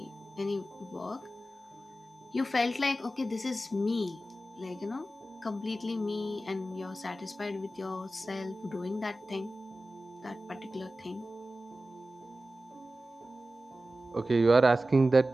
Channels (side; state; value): both; normal; correlation 0.94